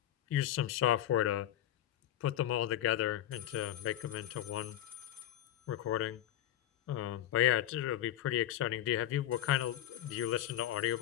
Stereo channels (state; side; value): quieter; right; 12.5 dB